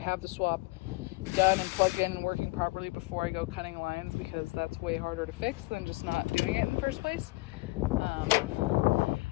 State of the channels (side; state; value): right; quieter; 23.8 dB